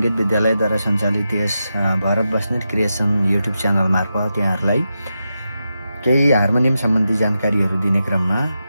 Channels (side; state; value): both; inverted; correlation -0.89